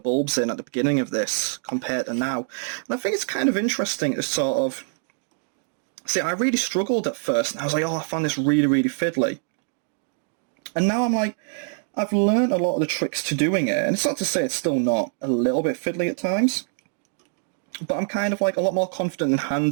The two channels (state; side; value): silent; left; digital silence